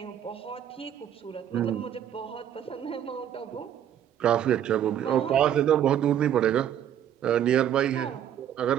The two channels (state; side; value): quieter; left; 10.1 dB